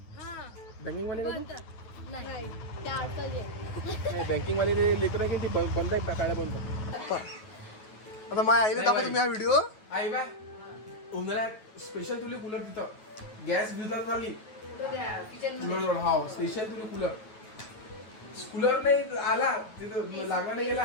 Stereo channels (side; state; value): right; late; 9.3 ms